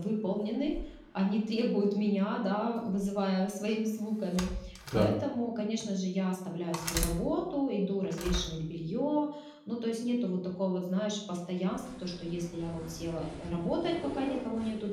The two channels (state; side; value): identical; both; correlation 1.00